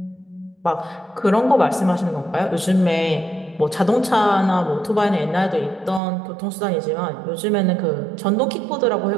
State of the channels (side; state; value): left; drops out; at 6.0 s